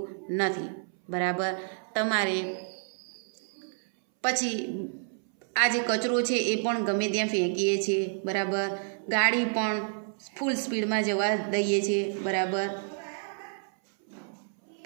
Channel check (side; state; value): left; silent; 58 dB below the other